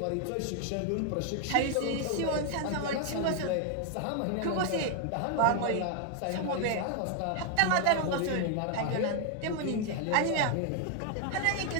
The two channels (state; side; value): different; both; correlation 0.00